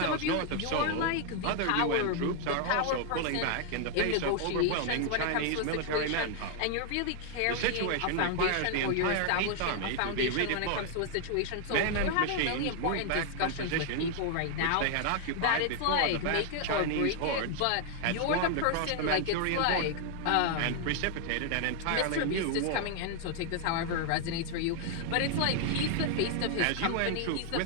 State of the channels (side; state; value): both; different; correlation 0.00